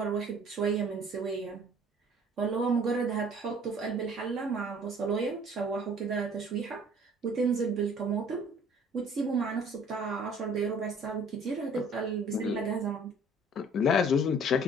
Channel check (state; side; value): normal; both; correlation 0.53